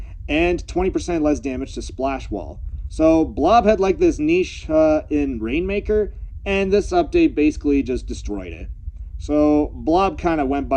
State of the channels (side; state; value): both; identical; correlation 1.00